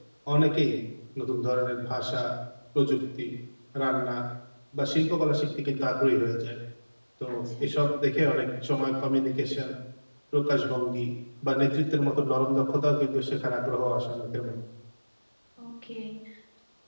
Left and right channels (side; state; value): both; inverted; correlation -1.00